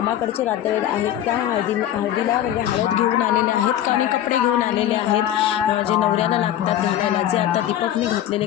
नातेवाईक आहेत. त्या हळदीला म्हणजे हळद घेऊन आलेले आहेत आणि कपडे घेऊन आलेले आहेत जे नवऱ्याला लागतात घालायला. जे आता दीपकने घातलेले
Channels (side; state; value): right; quieter; 11.7 dB